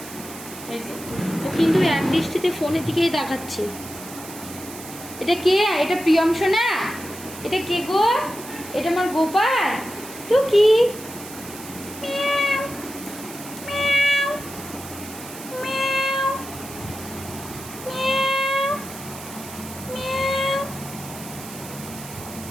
ও কিন্তু এক দৃষ্টিতে ফোনের দিকেই দেখাচ্ছে। এটা কে? এটা প্রিয়ম সোনা? এটা কে গো? এটা আমার গোপাল। তো কি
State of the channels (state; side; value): noise; right; hiss, 14 dB below the sound